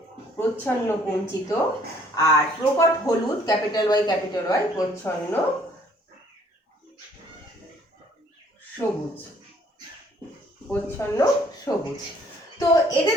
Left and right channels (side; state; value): both; normal; correlation 0.61